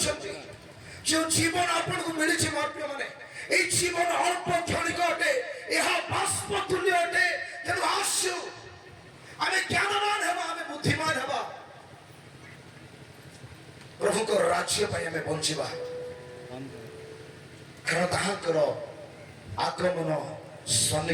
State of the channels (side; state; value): both; identical; correlation 1.00